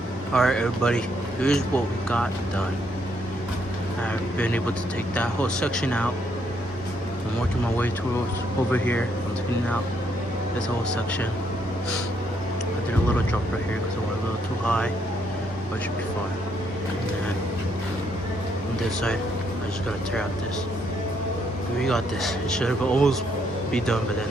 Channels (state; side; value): normal; both; correlation 0.73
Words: Alright everybody, here's what we got done. I've been able to take that whole section out. I'm working my way towards over here. I'm taking out this whole section. I did a little drop right here because I went a little too high, but it should be fine. And then on this side, I just gotta tear out this. We got this. It should have almost be done by the